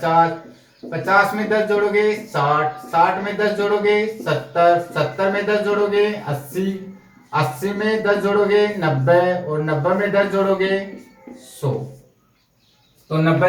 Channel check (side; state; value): both; identical; correlation 1.00